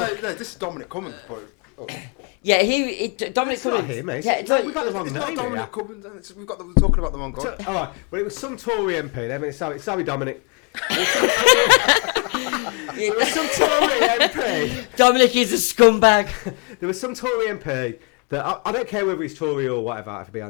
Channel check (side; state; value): right; quieter; 36.5 dB